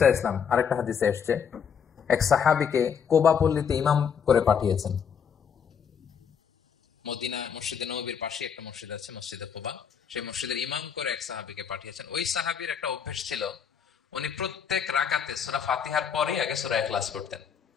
আলাইহি ওয়াসাল্লাম আরেকটা হাদিসে এসেছে, এক সাহাবীকে কোবা পল্লীতে ইমাম করে পাঠিয়েছেন। মদিনা মসজিদে নববীর পাশে একটা মসজিদ আছে, মসজিদে কোবা, সেই মসজিদের ইমাম করে এক সাহাবীকে পাঠিয়েছেন। ওই সাহাবীর একটা অভ্যাস ছিল, উনি প্রত্যেক রাকাতে সূরা ফাতিহার পরে আগে সূরা ইখলাস পড়তেন।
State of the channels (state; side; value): quieter; right; 7.2 dB